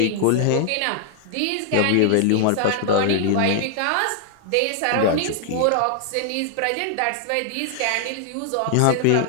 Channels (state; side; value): different; both; correlation 0.00